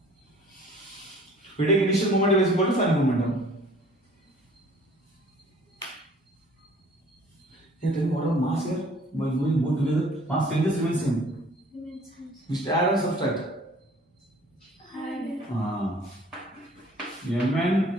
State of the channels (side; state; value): both; normal; correlation 0.53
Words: We take initial momentum is equal to final momentum. Hey, tell me what about mass here? By moving both together, mass changes remains same. We should add or subtract? Add. Mn,